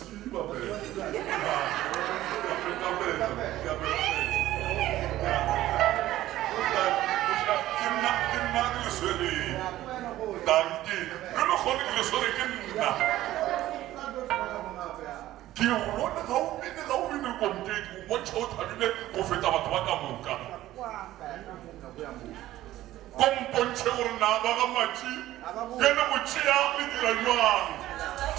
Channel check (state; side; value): quieter; left; 14.8 dB